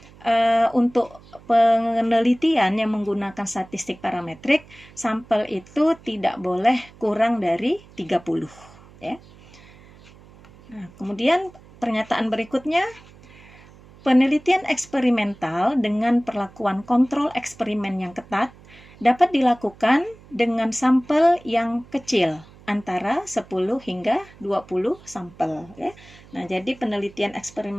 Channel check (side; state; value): right; noise; hum, 23 dB below the sound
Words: untuk penelitian yang menggunakan statistik parametrik, sampel itu tidak boleh kurang dari 30 ya. Nah, kemudian pernyataan berikutnya, penelitian eksperimental dengan perlakuan kontrol eksperimen yang ketat dapat dilakukan dengan sampel yang kecil, antara 10 hingga 20 sampel ya. Nah, jadi penelitian